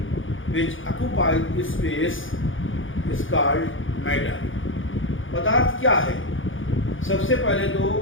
which occupies space is called matter. पदार्थ क्या है? सबसे पहले तो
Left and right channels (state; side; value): late; right; 0.57 ms